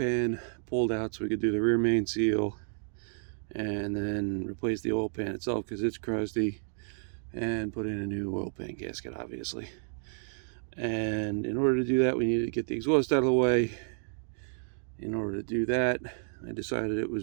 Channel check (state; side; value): silent; left; digital silence